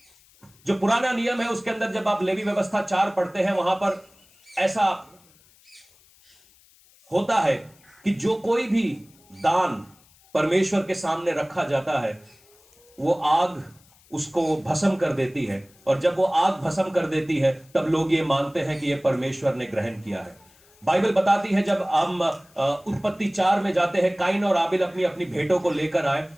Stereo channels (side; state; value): left; noise; hiss, 29 dB below the sound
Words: जो पुराना नियम है उसके अंदर जब आप लेवी व्यवस्था 4 पढ़ते हैं, वहां पर ऐसा होता है कि जो कोई भी दान परमेश्वर के सामने रखा जाता है वो आग उसको भस्म कर देती है, और जब वो आग भस्म कर देती है तब लोग ये मानते हैं कि ये परमेश्वर ने ग्रहण किया है। बाइबल बताती है जब हम उत्पत्ति 4 में जाते हैं, काइन और आबिल अपनी अपनी भेंटों को लेकर आए